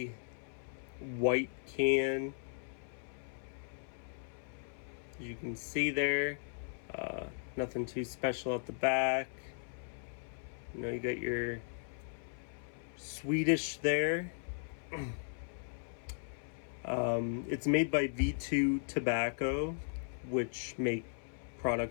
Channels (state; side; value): silent; right; 53 dB below the other